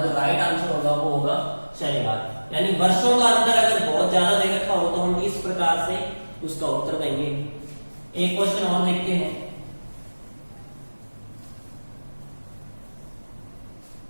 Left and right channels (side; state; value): both; inverted; correlation -1.00